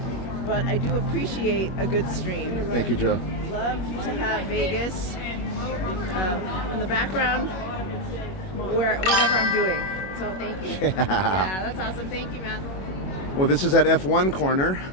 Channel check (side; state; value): right; late; 21 ms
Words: but I do appreciate a good stream. Thank you, Joe. Love to have Vegas in the background, whatever I'm doing. So thank you. Yeah, that's awesome. Thank you, man. Well, this is at F1 corner,